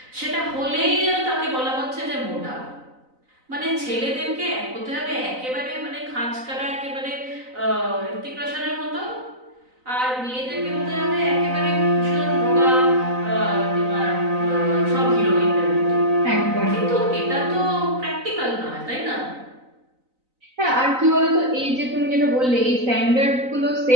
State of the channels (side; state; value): left; late; 3.9 ms